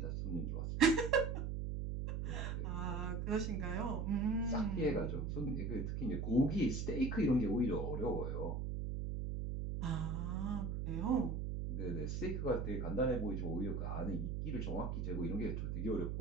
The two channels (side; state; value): right; noise; hum, 2 dB below the sound